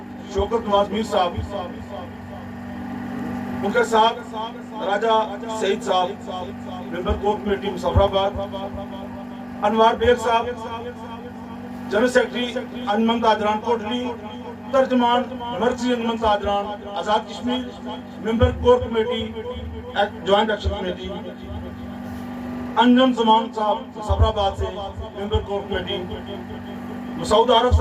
शौकत नवाज मीर साहब, उनके साथ Raja Saeed sahab member core committee Muzaffarabad, Anwar Baig sahab general secretary Anjuman Tajran Kotli, तर्जमान मर्कजी Anjuman Tajran Azad Kashmir member core committee joint action committee, Anjum Zaman sahab Muzaffarabad से member core committee, Masood Arif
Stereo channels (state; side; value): identical; both; correlation 1.00